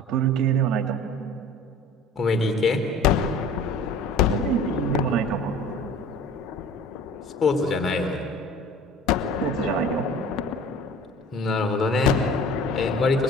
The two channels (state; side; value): normal; both; correlation 0.44